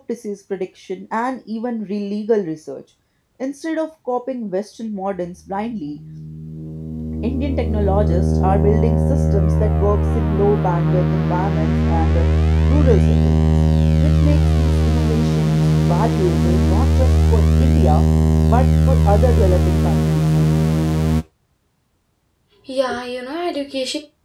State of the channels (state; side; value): identical; both; correlation 1.00